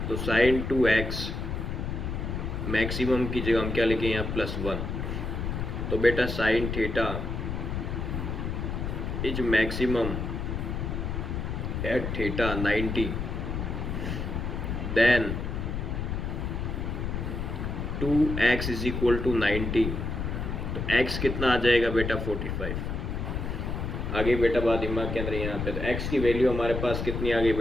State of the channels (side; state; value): left; noise; rumble, 3 dB below the sound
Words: तो sin 2x मैक्सिमम की जगह हम क्या लिखें? यहाँ +1। तो बेटा sin theta is maximum at theta 90, then 2x = 90। तो x कितना आ जाएगा बेटा? 45। आगे बेटा बात दिमाग के अंदर यहाँ पे, तो x की वैल्यू हमारे पास कितनी आ गई